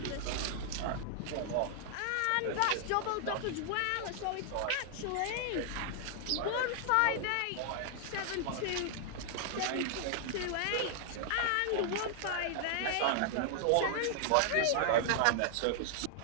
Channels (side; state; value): both; different; correlation -0.01